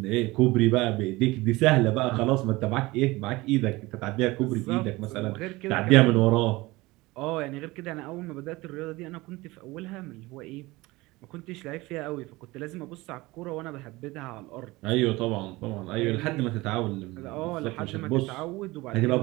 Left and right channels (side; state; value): left; quieter; 21.0 dB